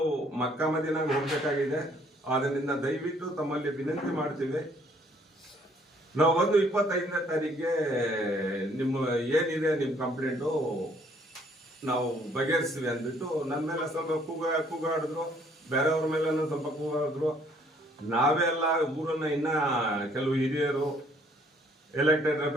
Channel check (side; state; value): both; normal; correlation 0.63